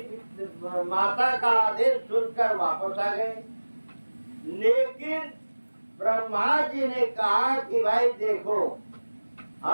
माता का आदेश सुनकर वापस आ गए। लेकिन ब्रह्मा जी ने कहा कि भाई देखो,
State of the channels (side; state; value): both; inverted; correlation -1.00